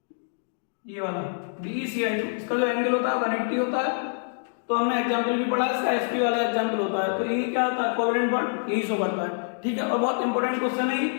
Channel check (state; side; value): silent; right; digital silence